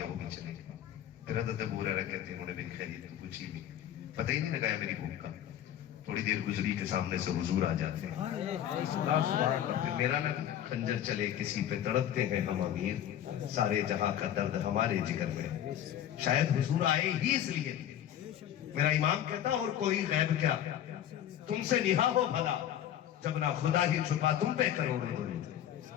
وہ بھی چلے گئے. پھر حضرت ابو ہریرہ کہتے ہیں انہوں نے میری خیریت تو پوچھی بھی, پتہ ہی نہیں لگایا میری بھوک کا. تھوڑی دیر گزری کے سامنے سے حضور آ جاتے ہیں. پھر میرا نہ خنجر چلے کسی پہ تڑپتے ہیں ہم امیر, سارے جہاں کا درد ہمارے جگر میں. شاید حضور آئے ہی اس لیے. میرا امام کہتا اور کوئی غیب کیا, تم سے نہا ہو بھلا, جب نہ خدا ہی چھپا تم پہ کروڑے درود.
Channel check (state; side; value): quieter; right; 11.0 dB